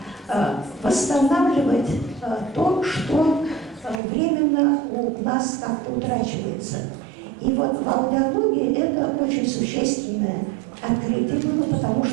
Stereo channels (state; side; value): drops out; left; at 4.0 s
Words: восстанавливать то, что временно у нас как-то утрачивается. И вот в аудиологии это очень существенное открытие было, потому